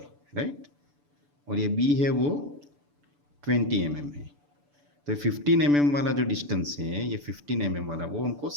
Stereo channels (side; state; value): left; late; 6.9 ms